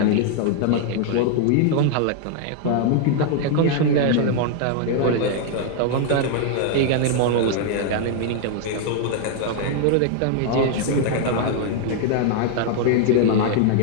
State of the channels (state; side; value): different; both; correlation 0.00